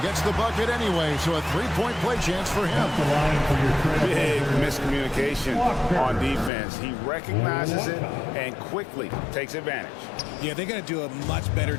Gets the bucket anyway, so a three-point play chance for him. Big miscommunication on defense. He recognizes it and quickly takes advantage. Yeah, they're going to do a much better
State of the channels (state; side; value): drops out; right; at 6.5 s